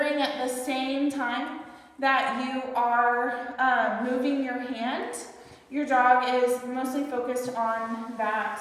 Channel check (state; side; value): identical; both; correlation 1.00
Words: at the same time that you are moving your hand, your dog is mostly focused on